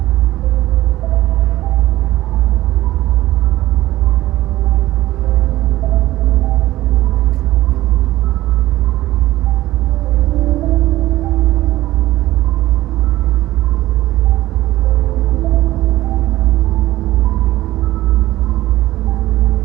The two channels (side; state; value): left; quieter; 16.2 dB